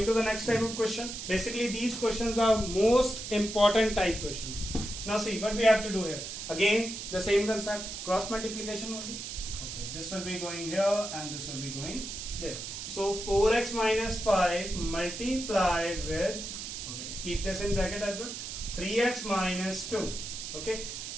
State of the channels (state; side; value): noise; right; hiss, 7 dB below the sound